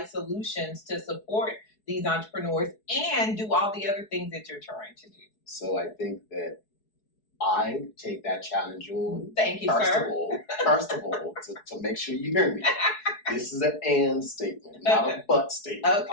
solutions to support these entrepreneurs and do all the other things that you're trying to do. So I think that I take that challenge on. Thank you, sir. First of all, to make sure you hear me, this is an and statement, not a but statement.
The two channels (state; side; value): late; right; 4.7 ms